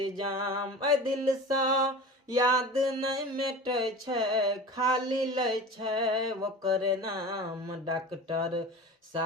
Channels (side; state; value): both; normal; correlation 0.34